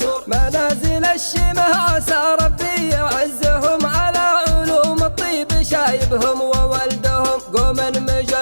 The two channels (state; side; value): inverted; both; correlation -1.00